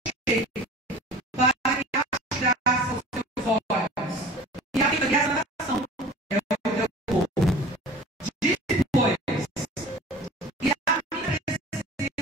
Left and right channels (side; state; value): both; normal; correlation 0.41